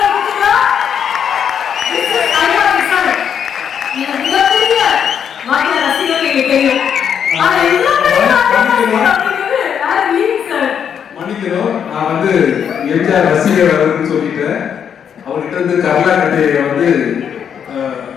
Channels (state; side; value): quieter; right; 8.1 dB